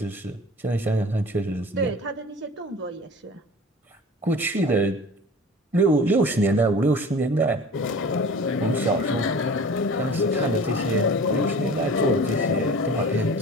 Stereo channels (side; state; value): both; normal; correlation 0.40